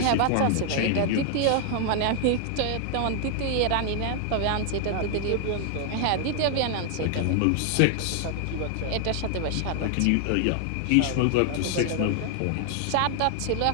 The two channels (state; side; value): different; both; correlation 0.00